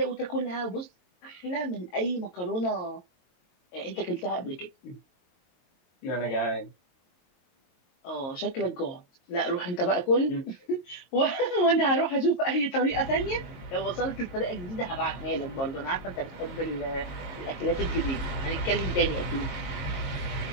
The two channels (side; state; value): right; late; 22 ms